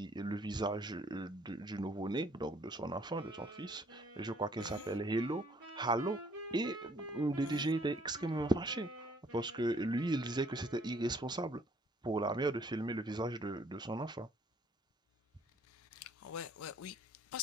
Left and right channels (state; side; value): normal; both; correlation 0.62